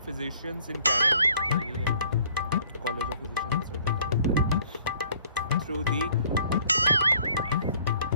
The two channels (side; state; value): both; inverted; correlation -0.58